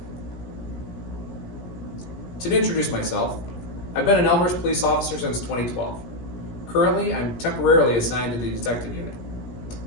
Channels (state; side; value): late; right; 17 ms